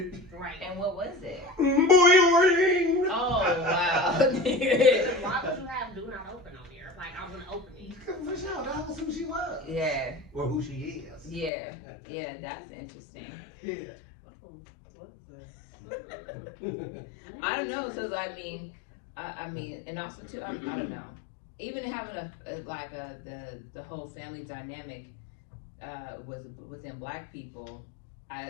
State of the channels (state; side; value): drops out; right; at 11.5 s